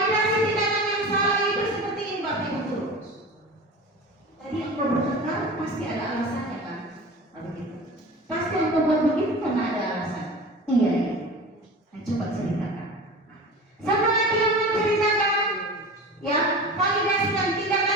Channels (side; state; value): both; normal; correlation 0.34